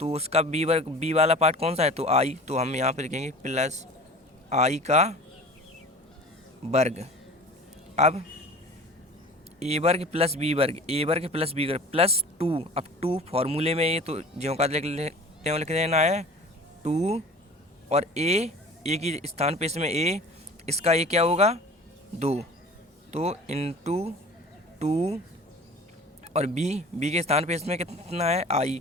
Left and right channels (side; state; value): both; normal; correlation 0.41